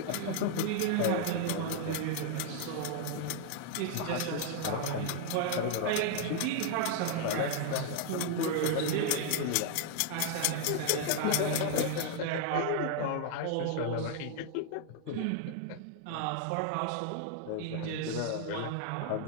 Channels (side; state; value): both; different; correlation 0.00